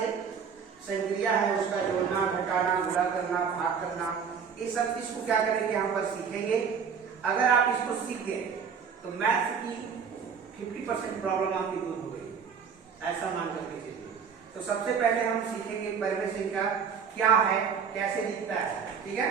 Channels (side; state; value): left; quieter; 6.5 dB